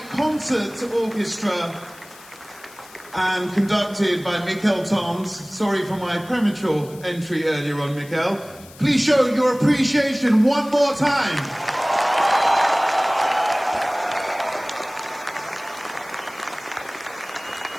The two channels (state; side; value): noise; left; hiss, 21 dB below the sound